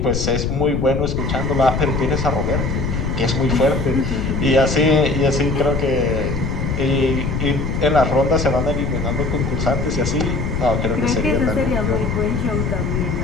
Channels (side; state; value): left; noise; rumble, 1 dB below the sound